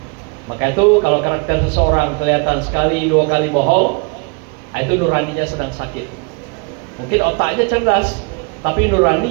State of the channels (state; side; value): quieter; left; 32.7 dB